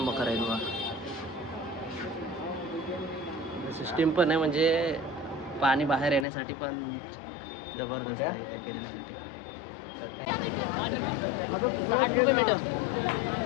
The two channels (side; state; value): right; drops out; at 6.2 s